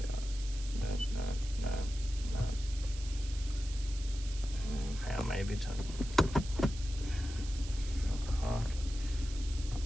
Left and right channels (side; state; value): right; noise; hiss, 14 dB below the sound